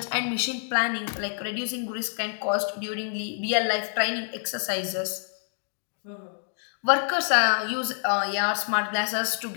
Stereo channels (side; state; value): right; silent; digital silence